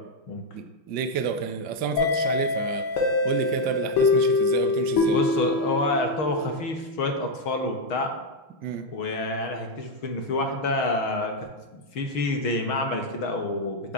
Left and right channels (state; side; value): late; right; 5.2 ms